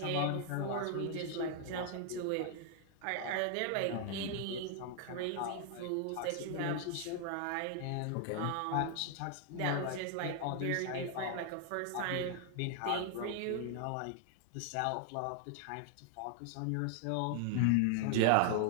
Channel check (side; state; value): both; different; correlation 0.00